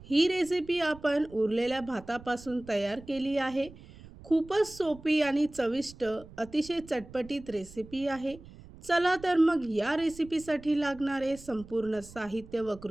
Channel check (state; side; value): noise; right; rumble, 19 dB below the sound